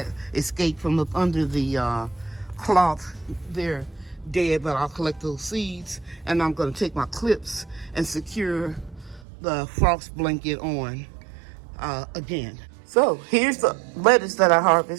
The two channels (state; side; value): drops out; left; at 9.2 s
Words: escaped from up under the cloth. They're dead, but I'll collect those seeds, and I'm going to take my clips and secure the frost blanket on again. So here's the lettuce that I